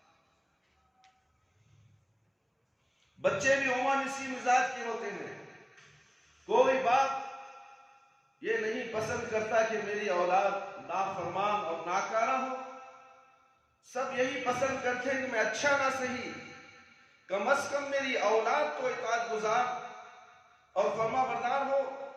بچے بھی عموماً اسی مزاج کے ہوتے ہیں، کوئی باپ یہ نہیں پسند کرتا کہ میری اولاد نافرمان اور ناکارہ ہو، سب یہی پسند کرتے ہیں کہ میں اچھا نہ صحیح کم از کم میری اولاد تو اطاعت گزار اور فرما بردار ہو،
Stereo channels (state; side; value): identical; both; correlation 1.00